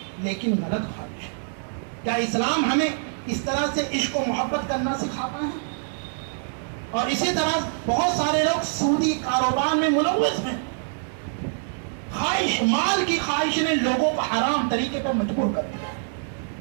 لیکن غلط خواہش ہے. کیا اسلام ہمیں اس طرح سے عشق و محبت کرنا سکھاتا ہے؟ اور اسی طرح بہت سارے لوگ سودی کاروبار میں ملوث ہیں. مال کی خواہش نے لوگوں کو حرام طریقے پر مجبور کر دیا.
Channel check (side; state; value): left; silent; digital silence